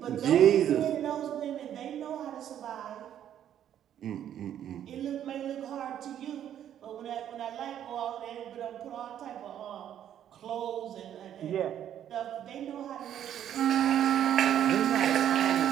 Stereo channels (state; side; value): quieter; left; 10.3 dB